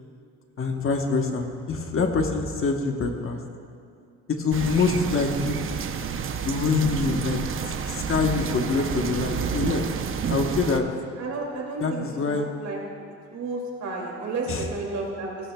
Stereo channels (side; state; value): both; normal; correlation 0.39